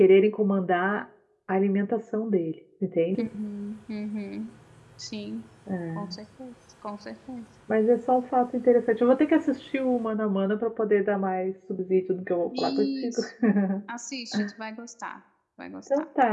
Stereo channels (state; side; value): identical; both; correlation 1.00